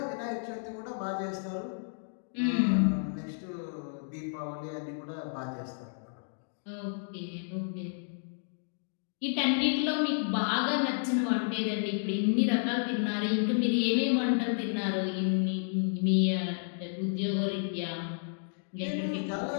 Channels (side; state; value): right; silent; digital silence